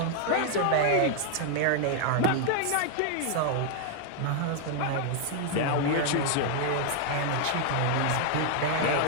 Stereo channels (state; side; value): different; both; correlation 0.00